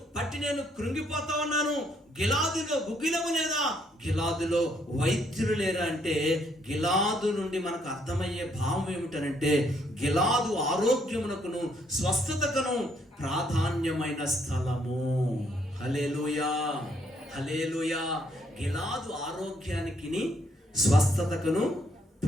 పట్టి నేను కృంగిపోతా ఉన్నాను. గిలాదులో గుగ్గిలము లేదా? గిలాదులో వైద్యులు లేరా అంటే, గిలాదు నుండి మనకు అర్థమయ్యే భావం ఏమిటనంటే, గిలాదు ఆరోగ్యమునకును స్వస్థతకును ప్రాధాన్యమైన స్థలము. హల్లెలూయా, హల్లెలూయా. గిలాదు ఆరోగ్యానికి స్వస్థతకును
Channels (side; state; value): both; normal; correlation 0.70